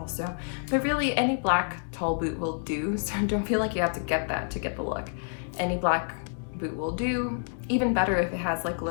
But really, any black tall boot will do, so don't feel like you have to get that to get the look. Any black boot will do. Even better if it has like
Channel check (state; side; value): silent; right; digital silence